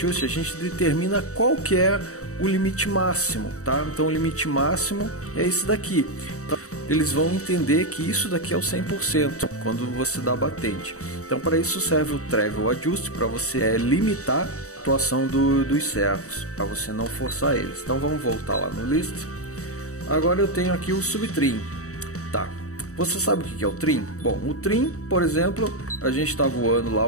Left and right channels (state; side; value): late; right; 0.65 ms